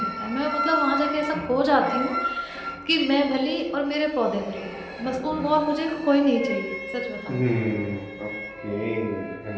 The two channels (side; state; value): both; identical; correlation 1.00